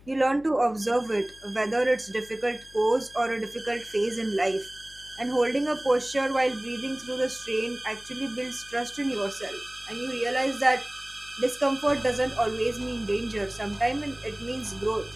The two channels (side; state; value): left; noise; hum, 24 dB below the sound